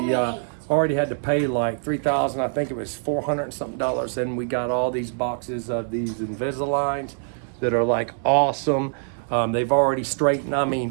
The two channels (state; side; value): silent; left; digital silence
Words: already had to pay like $3,000. I think it was $400 and something, and we got all these boxes of these Invisaligns that are like awesome. They've already straightened, I